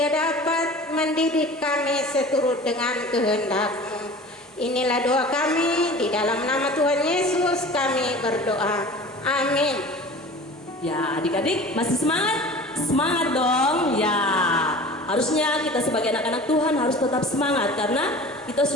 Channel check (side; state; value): both; normal; correlation 0.40